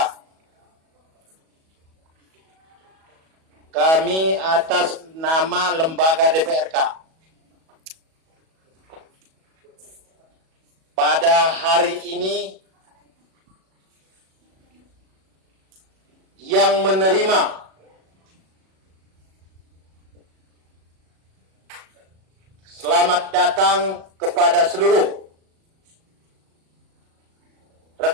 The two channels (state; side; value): late; left; 37 ms